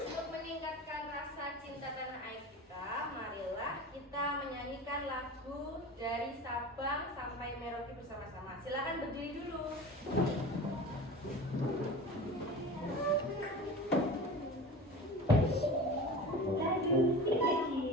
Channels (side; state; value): both; normal; correlation 0.34